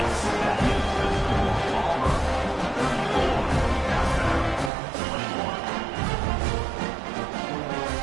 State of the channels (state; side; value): drops out; left; at 4.7 s